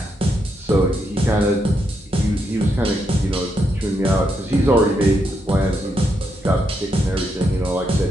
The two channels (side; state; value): both; normal; correlation 0.80